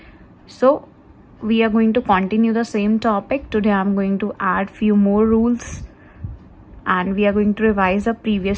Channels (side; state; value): both; identical; correlation 1.00